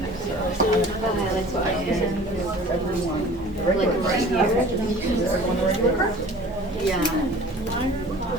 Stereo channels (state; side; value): normal; both; correlation 0.45